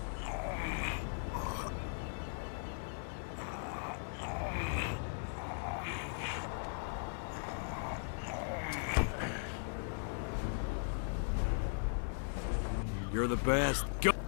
You're the best. Go!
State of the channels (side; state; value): right; silent; digital silence